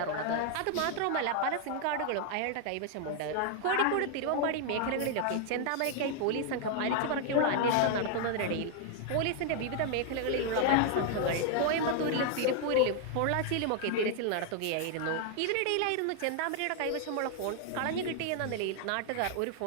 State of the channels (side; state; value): both; different; correlation 0.00